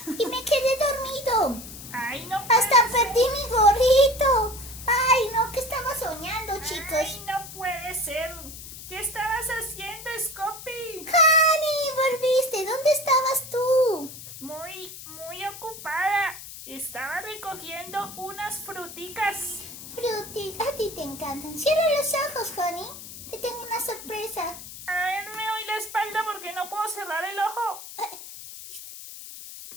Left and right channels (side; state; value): left; noise; hiss, 13 dB below the sound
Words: Y me quedé dormido. Ay, no Hasta puede perdí mi gorrito. Ay, no, ¿qué estaba soñando, ser. chicos? Ay, no puede ser. ¿Qué estabas haciendo, Scopy? Honey, volviste. ¿Dónde estabas tú? Muy ocupada. Estaba recogiendo unas fruticas. Fruti, a ti te encantan. Cierra los ojos, Honey. Te tengo una sorpresa. A ver, me doy la espalda porque no puedo cerrar el ojo. Listo.